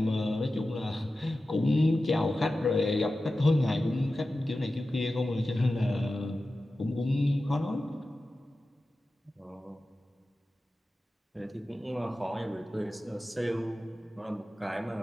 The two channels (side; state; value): both; normal; correlation 0.94